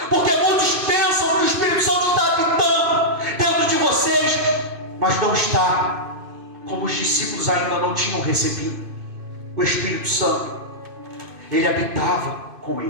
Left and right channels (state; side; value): late; left; 2.5 ms